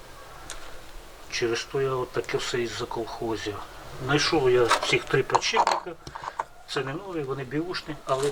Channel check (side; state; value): both; identical; correlation 1.00